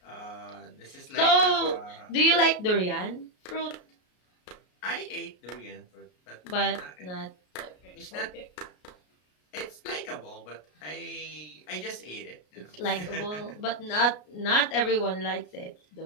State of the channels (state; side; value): late; right; 33 ms